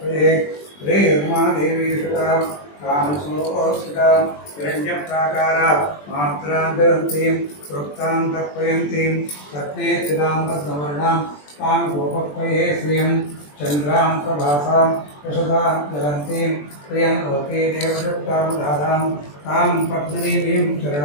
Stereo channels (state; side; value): late; right; 20 ms